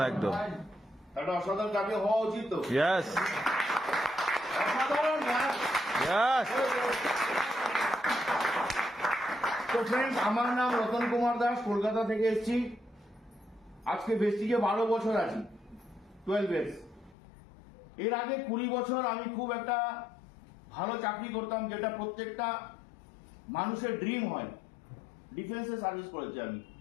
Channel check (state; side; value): drops out; right; at 17.2 s